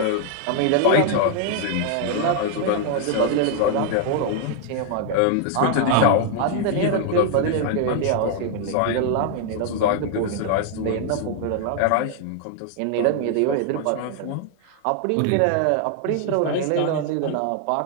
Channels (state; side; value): different; both; correlation 0.00